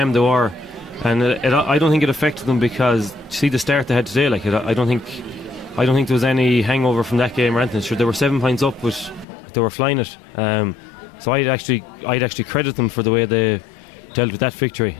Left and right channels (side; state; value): right; drops out; at 9.2 s